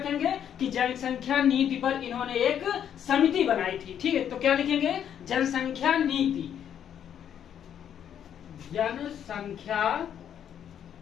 कि जनसंख्या नीति पर इन्होंने एक समिति बनाई थी। ठीक है, तो क्या लिखेंगे, जनसंख्या नीति।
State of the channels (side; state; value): right; quieter; 9.3 dB